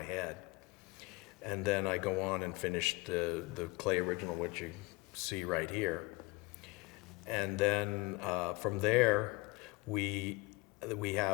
head. And then I go on and finish the clay original, which you see right here. And then from there, we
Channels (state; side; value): quieter; right; 23.6 dB